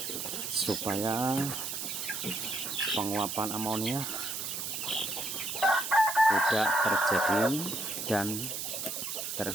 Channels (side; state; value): right; noise; hiss, 4 dB below the sound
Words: supaya penguapan amonia tidak terjadi dan